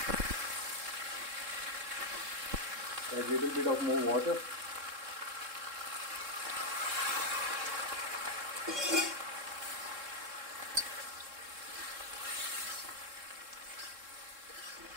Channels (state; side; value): late; left; 3.7 ms